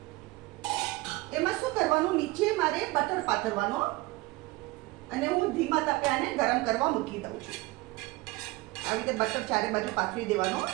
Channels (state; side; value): quieter; left; 20.9 dB